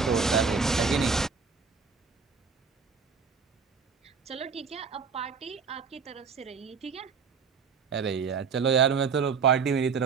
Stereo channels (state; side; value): quieter; left; 5.7 dB